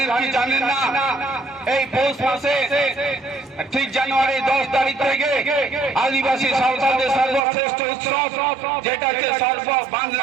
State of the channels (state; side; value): drops out; left; at 7.4 s